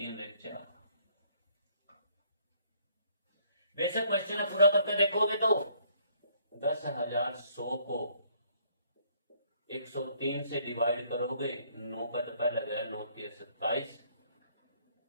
1 4। बेशक क्वेश्चन पूरा करके देखोगे तो 10,100 को 103 से डिवाइड करोगे, 9 का तो पहले गया, 9 3 27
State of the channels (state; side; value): inverted; both; correlation -0.64